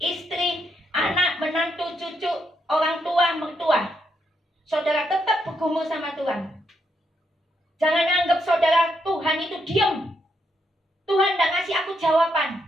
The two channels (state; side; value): normal; both; correlation 0.79